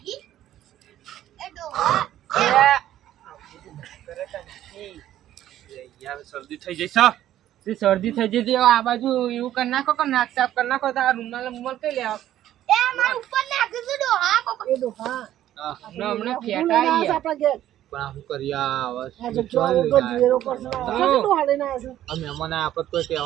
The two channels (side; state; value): left; quieter; 12.5 dB